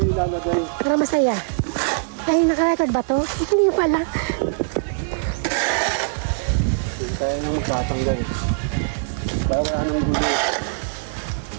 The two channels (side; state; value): left; silent; 64 dB below the other